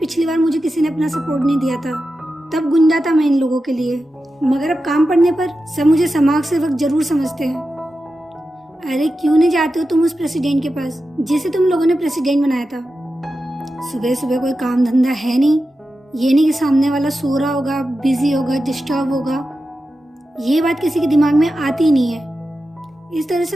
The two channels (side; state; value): both; normal; correlation 0.91